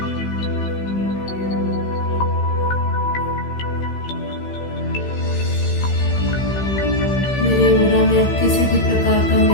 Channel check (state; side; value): late; right; 15 ms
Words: मेरे ओरा में अब किसी भी प्रकार का